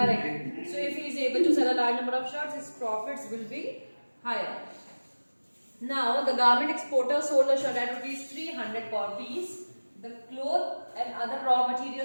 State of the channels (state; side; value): inverted; both; correlation -1.00